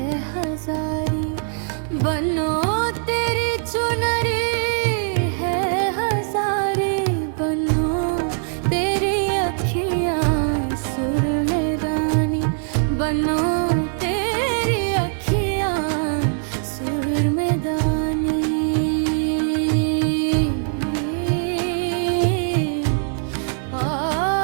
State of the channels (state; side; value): silent; left; digital silence